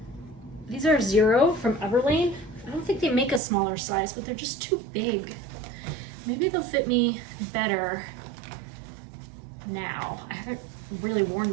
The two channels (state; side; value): drops out; left; at 3.4 s